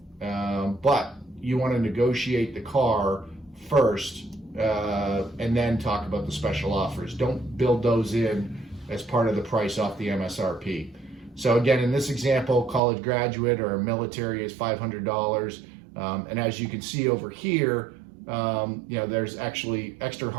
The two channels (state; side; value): drops out; left; at 12.8 s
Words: But you want to negotiate the car first, and then talk about the special offers. Don't build those in as part of the price off the MSRP. So again, in this example, college graduate or military is $500. And as you can see over here, there's actually extra